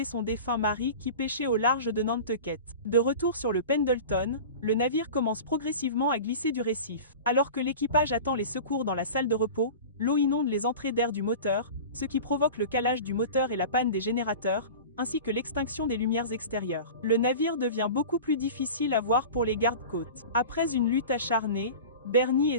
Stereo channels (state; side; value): inverted; both; correlation -0.34